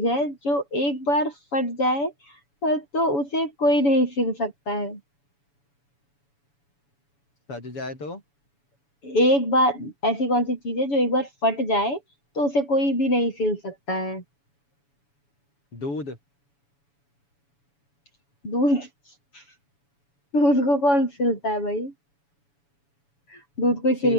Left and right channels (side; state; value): right; late; 7.1 ms